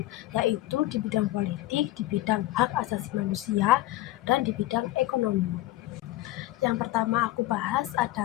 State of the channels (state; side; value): quieter; right; 16.4 dB